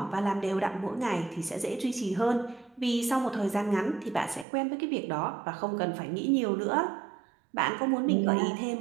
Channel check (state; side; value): drops out; left; at 4.5 s